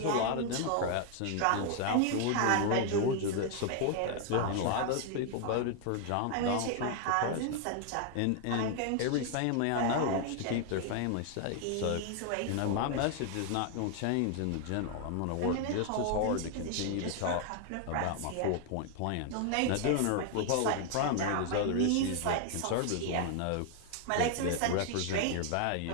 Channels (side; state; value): both; different; correlation 0.00